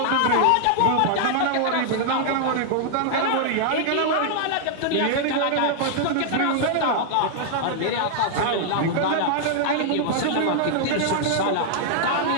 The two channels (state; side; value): different; both; correlation 0.00